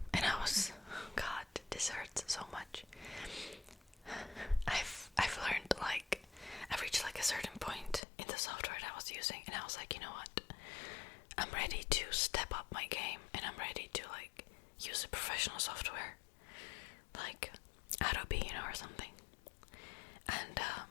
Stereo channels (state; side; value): drops out; right; at 8.0 s